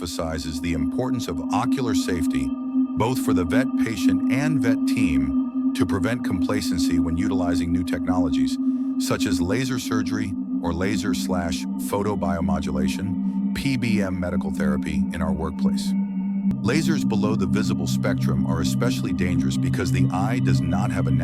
the importance of ocular safety, both for the vet patient and vet team, to prevent complacency when utilizing new technologies, such as laser surgery or laser/photobiomodulation, (PBM) medical therapy in our workplace. Lasers below the visible spectrum are especially dangerous because the eye does not have a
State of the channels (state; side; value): identical; both; correlation 1.00